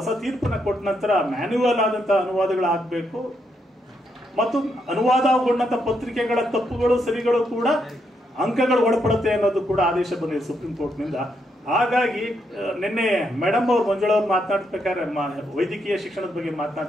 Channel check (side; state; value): both; normal; correlation 0.78